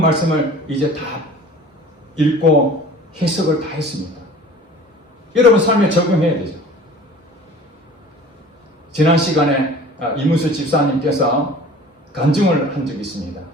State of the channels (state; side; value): normal; both; correlation 0.44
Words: 말씀을 이제 다 읽고 해석을 다 했습니다. 여러분 삶에 적용해야 되죠. 지난 시간에 이문수 집사님께서 간증을 한 적이 있습니다.